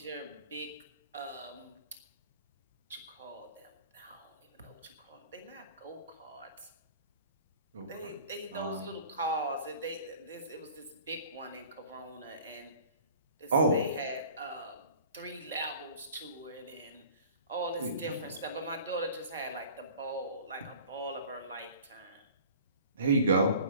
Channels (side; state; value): both; inverted; correlation -0.46